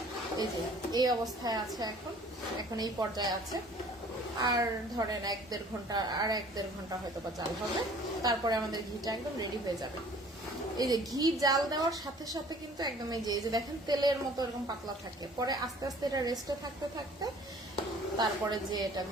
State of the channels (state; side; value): normal; both; correlation 0.52